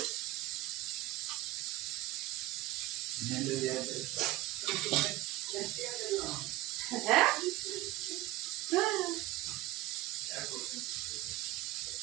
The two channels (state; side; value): quieter; left; 17.2 dB